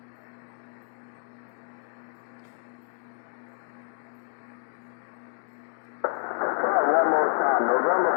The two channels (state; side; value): silent; right; digital silence